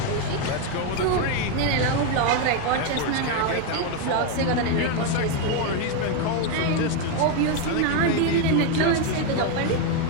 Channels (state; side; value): different; both; correlation 0.02